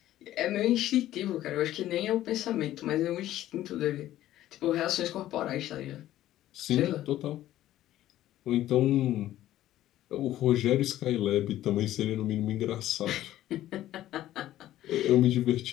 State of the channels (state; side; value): quieter; right; 13.7 dB